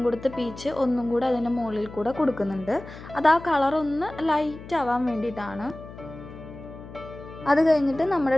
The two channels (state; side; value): noise; left; hum, 15 dB below the sound